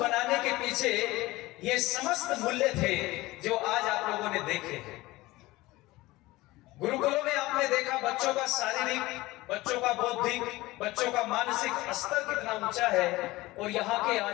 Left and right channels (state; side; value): quieter; right; 19.5 dB